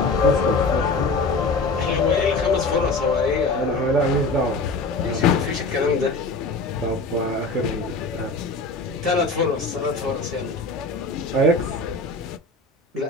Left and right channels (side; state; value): right; quieter; 3.2 dB